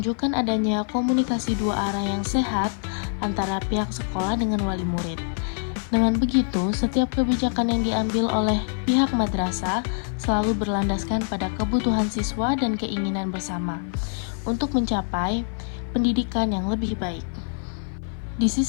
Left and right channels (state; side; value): silent; right; 55 dB below the other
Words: adanya komunikasi dua arah yang sehat antara pihak sekolah dengan wali murid. Dengan begitu, setiap kebijakan yang diambil oleh pihak madrasah selalu berlandaskan pada kebutuhan siswa dan keinginan bersama untuk mencapai pendidikan yang lebih baik. Di